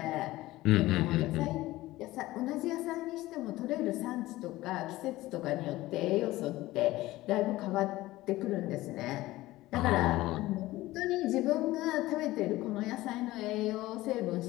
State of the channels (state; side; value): quieter; right; 17.6 dB